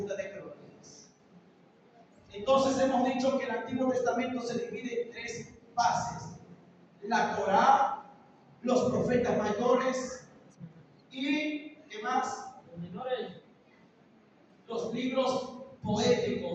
de Crónicas. Entonces hemos dicho que el Antiguo Testamento se divide en 3 bases: la Torá, los profetas mayores y ¿qué más? Los menores. Los libros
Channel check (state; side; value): identical; both; correlation 1.00